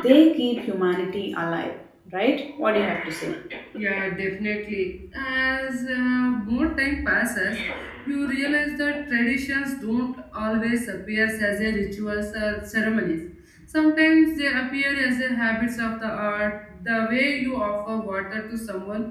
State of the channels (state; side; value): identical; both; correlation 1.00